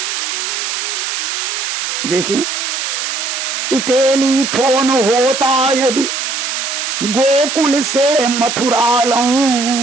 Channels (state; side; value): noise; right; hiss, 3 dB below the sound